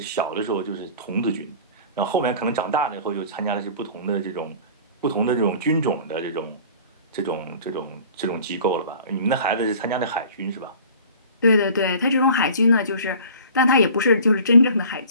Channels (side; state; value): both; inverted; correlation -0.44